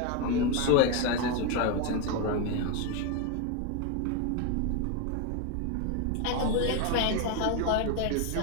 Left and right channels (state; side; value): different; both; correlation 0.02